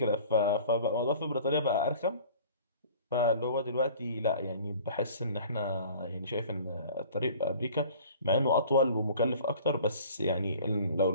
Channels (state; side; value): inverted; both; correlation -0.47